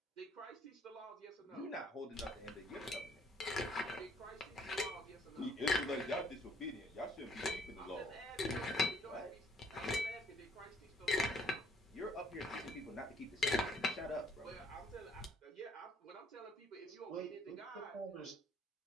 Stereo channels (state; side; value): normal; both; correlation 0.63